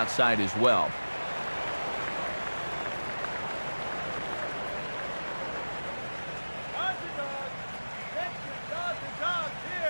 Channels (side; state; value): both; inverted; correlation -1.00